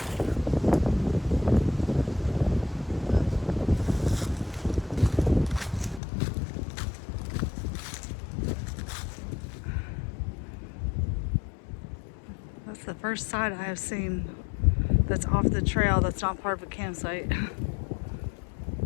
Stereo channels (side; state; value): right; drops out; at 6.0 s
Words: That's the first site I have seen that's off the trail that's not part of a campsite.